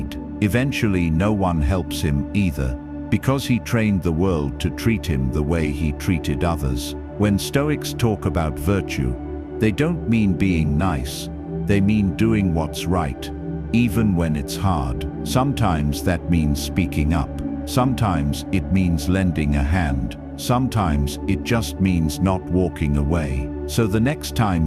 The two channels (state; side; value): identical; both; correlation 1.00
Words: Eventually, no one helps him either, because he trained the world to treat him the way he treated others. When Stoics talk about virtue, they don't mean being nice, they mean doing what's right, even when it's hard. Sometimes that means speaking up. Sometimes it means lending a hand. Sometimes it just means not walking away. So the next